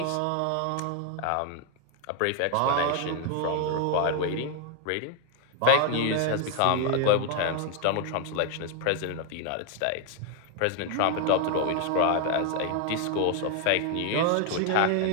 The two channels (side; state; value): both; different; correlation 0.00